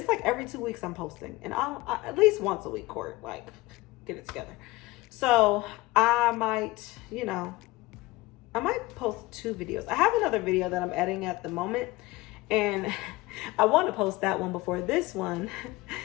like every 2 weeks I'm posting, and I at least once a week, Court, like, get it together. So I might, I might post 2 videos. I have another video that I'm editing at the moment, and I want to post that one before this one,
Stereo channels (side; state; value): right; quieter; 20.5 dB